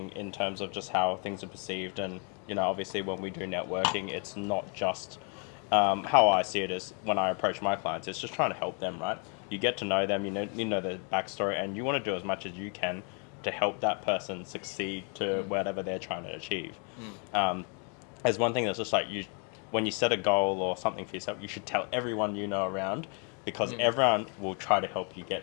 in terms of just how things are perceived. And, you know, obviously when we do networking, it's not just how I see it is when I approach my clients, it's just trying to help them, right? You get to know them, you know their backstory, and you want to do as much as you can to help that person succeed to whatever they're trying to achieve. There's one thing that's just like, when you set a goal or something for yourself, you should tell everyone you know around, because everyone will try to help you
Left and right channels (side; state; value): right; quieter; 38.4 dB